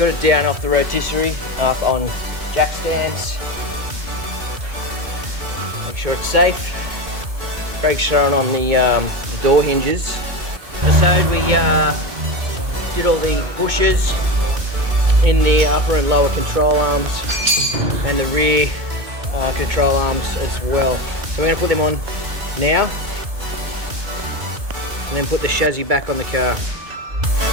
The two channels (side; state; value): left; late; 2.3 ms